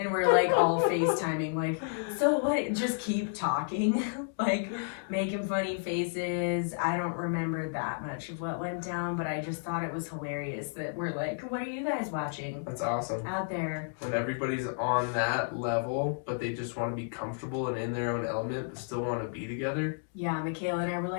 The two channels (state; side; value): silent; right; digital silence